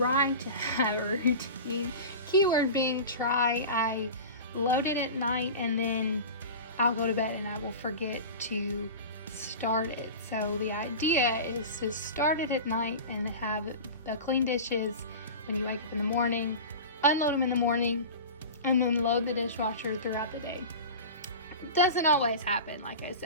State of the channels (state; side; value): inverted; both; correlation -0.31